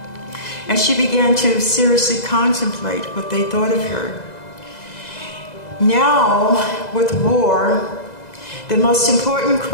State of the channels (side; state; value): right; late; 2.0 ms